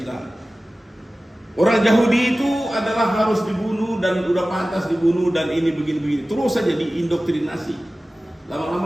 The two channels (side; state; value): both; normal; correlation 0.96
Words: orang Yahudi itu adalah harus dibunuh dan udah pantas dibunuh dan ini begini-begini, terus saja diindoktrinasi.